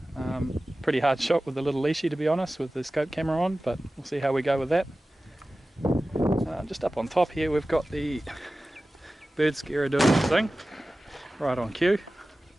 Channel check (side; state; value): both; normal; correlation 0.96